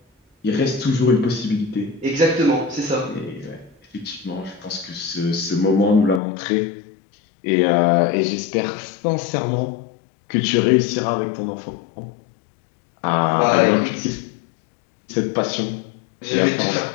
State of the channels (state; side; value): drops out; right; at 6.2 s